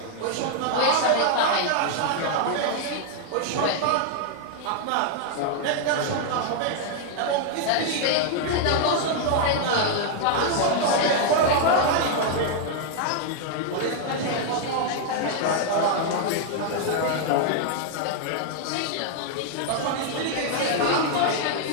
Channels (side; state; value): both; different; correlation 0.00